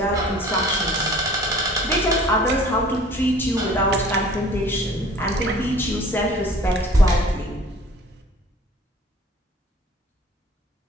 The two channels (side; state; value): both; normal; correlation 0.48